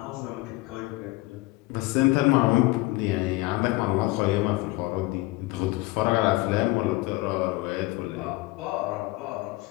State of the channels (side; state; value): right; quieter; 20.8 dB